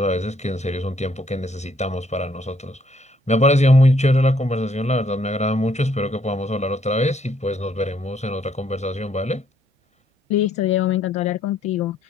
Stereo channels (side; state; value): both; normal; correlation 0.68